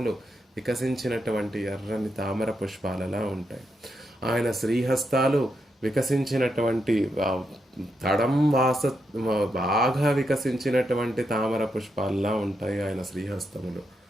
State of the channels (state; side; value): normal; both; correlation 0.82